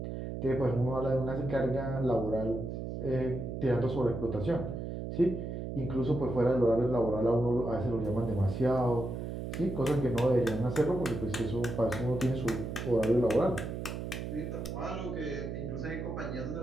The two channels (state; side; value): noise; right; hum, 5 dB below the sound